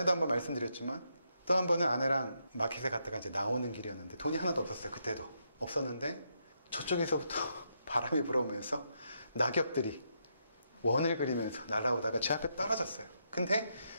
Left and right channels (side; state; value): both; inverted; correlation -0.79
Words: 한번 말씀드렸지만 또 한 번은 아내랑 마켓에 갔다가 이제 나오는 길이었는데 돈이 하나도 없었어요. 그때도 없었는데 저쪽에서부터 바람이 불어오면서 낙엽들이 원을 그리면서 날아오다가 제 앞에 떨어졌어요. 근데